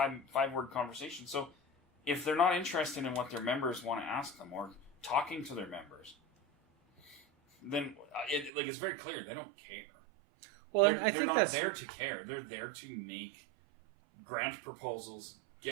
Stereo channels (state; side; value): drops out; left; at 8.5 s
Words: five-word conversation. So if they're not interested in what their members want to ask them or talking to their members, then it's very clear they don't care. Well, they're not there to care. They're there to make grant proposals,